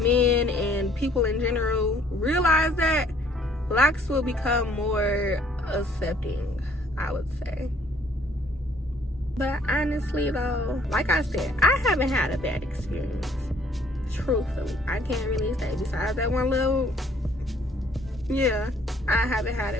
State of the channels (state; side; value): normal; both; correlation 0.61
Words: and people in general realize that, locks will become more accepting, I would say. But honestly though, like I said, I haven't had a bad experience. Truthfully, I can't really say. Besides that one little, yeah, I haven't had